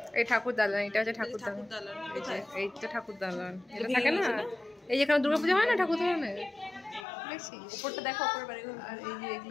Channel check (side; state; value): right; drops out; at 7.1 s